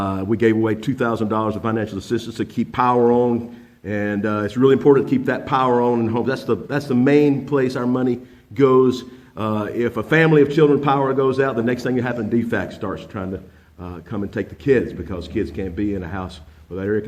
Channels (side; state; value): both; identical; correlation 1.00